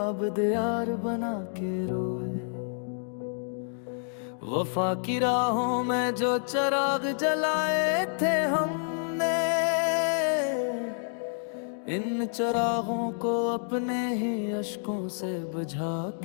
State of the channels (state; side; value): silent; right; digital silence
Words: दियार बना के रोए। वफा की राहों में जो चिराग जलाए थे हमने, इन चिरागों को अपने ही अश्कों से बुझा